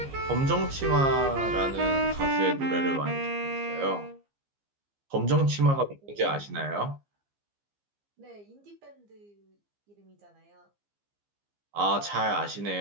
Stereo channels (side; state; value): left; late; 15 ms